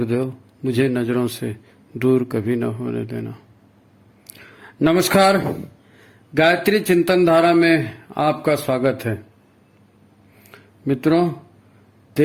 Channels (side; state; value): both; identical; correlation 1.00